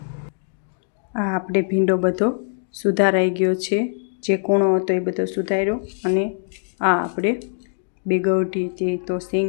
आ आपणे भींडो बधो सुधाराई गयो छे। जे कोणो हतो ए बधो सुधार्यो अने आ आपणे बेगवठी जे तो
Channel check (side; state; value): right; silent; digital silence